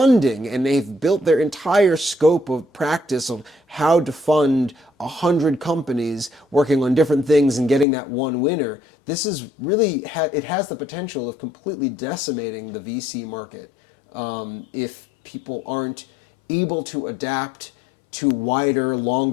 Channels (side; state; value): right; drops out; at 7.9 s